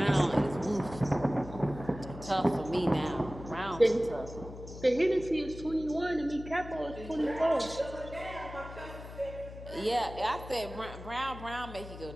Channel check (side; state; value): left; noise; hum, 13 dB below the sound